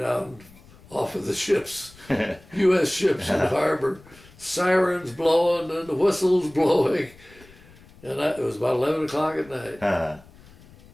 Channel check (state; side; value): noise; left; rumble, 24 dB below the sound